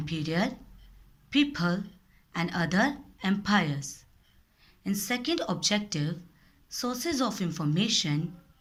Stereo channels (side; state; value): both; identical; correlation 1.00